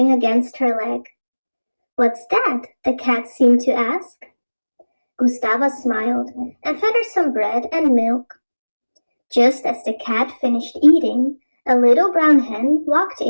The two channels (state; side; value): inverted; both; correlation -1.00